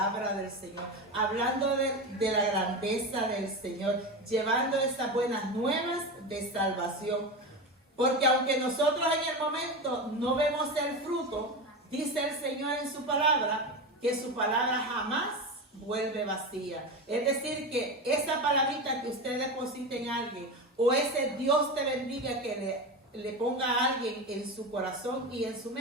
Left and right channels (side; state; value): both; normal; correlation 0.22